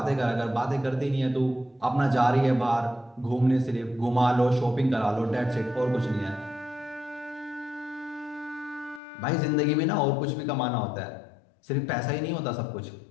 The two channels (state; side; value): drops out; right; at 9.0 s